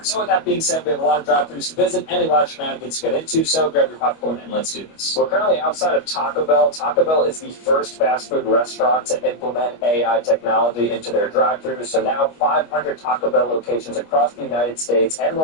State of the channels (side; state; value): right; late; 25 ms